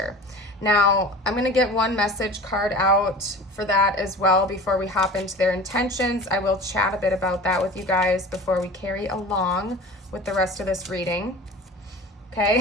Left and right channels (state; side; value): normal; both; correlation 0.38